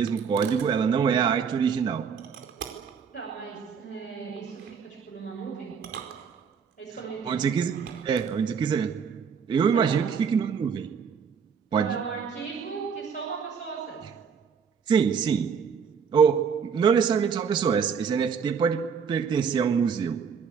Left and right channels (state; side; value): quieter; left; 6.6 dB